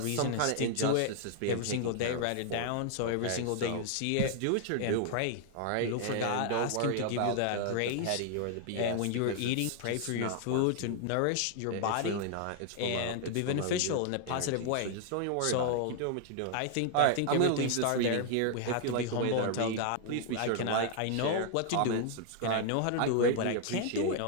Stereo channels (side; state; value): both; different; correlation 0.00